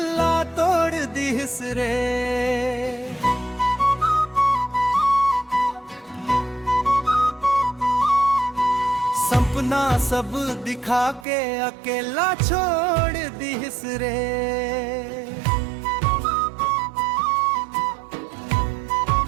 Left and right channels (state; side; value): drops out; left; at 11.2 s